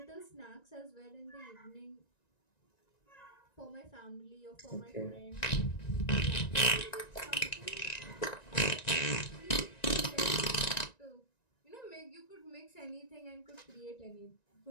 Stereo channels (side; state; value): right; late; 1.9 ms